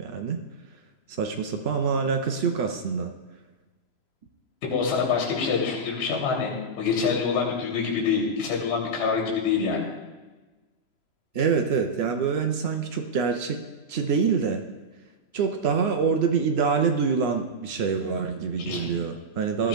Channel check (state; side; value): late; right; 3.0 ms